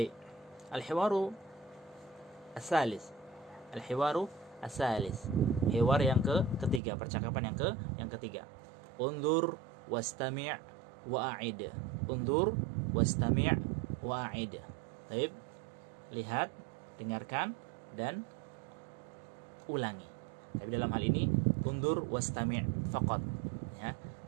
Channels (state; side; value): drops out; left; at 6.8 s